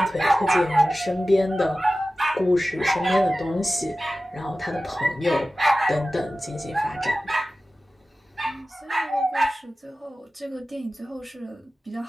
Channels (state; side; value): normal; both; correlation 0.95